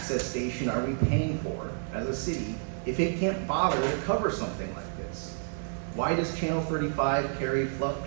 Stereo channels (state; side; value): silent; left; 58 dB below the other